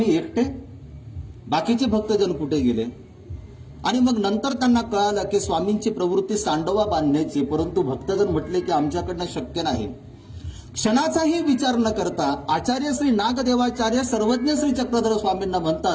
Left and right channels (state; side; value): identical; both; correlation 1.00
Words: एकटे, बाकीचे भक्तजन कुठे गेले. आणि मग नंतर त्यांना कळालं की स्वामींची प्रवृत्ती सांडोवा बांधण्याची, परंतु भक्तजन म्हटले की आमच्याकडनं शक्य नाही. क्षणाचाही विचार न करता आचार्य श्री नागदेवाचार्य सर्वज्ञ श्री चक्रधर स्वामींना